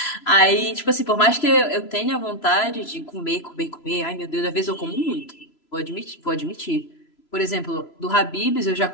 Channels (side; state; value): right; late; 3.0 ms